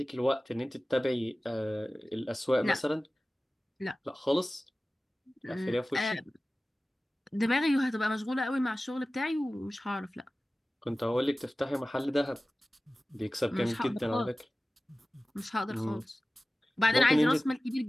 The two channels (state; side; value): normal; both; correlation 0.96